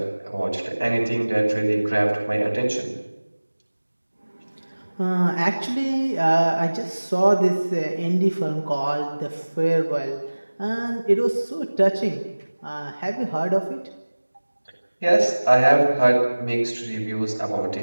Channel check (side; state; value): both; inverted; correlation -1.00